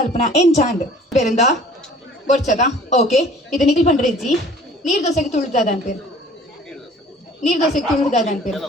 ಏನ್ ಚಾಂದ್ ಬೇರಿಂದ ಬರ್ಚದ ಓಕೆ ಇದು ನಿಖಿಲ್ ಪಂಡ್ರೆಜ್ಜಿ ನೀರ್ ದೋಸೆಗೆ ತುಳಿದಾದ ಅನ್ಪೇರು ನೀರ್ ದೋಸೆಗೆ ತುಳಿದಾದ ಅನ್ಪೇರು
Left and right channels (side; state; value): both; normal; correlation 0.50